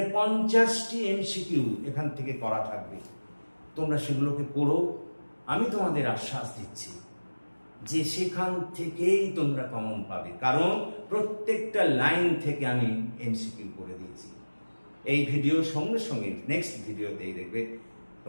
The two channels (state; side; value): inverted; both; correlation -1.00